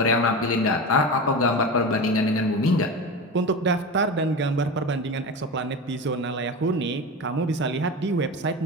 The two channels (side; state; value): both; normal; correlation 0.25